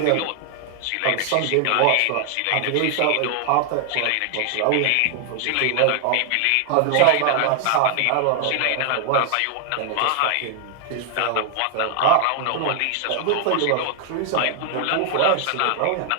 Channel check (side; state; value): both; different; correlation 0.00